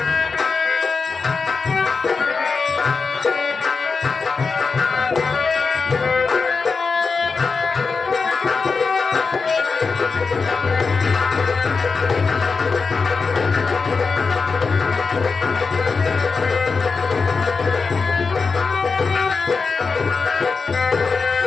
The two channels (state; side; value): quieter; right; 4.7 dB